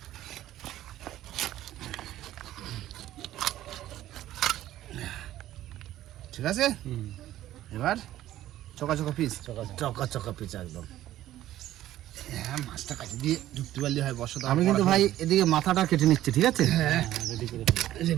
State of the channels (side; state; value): left; quieter; 13.7 dB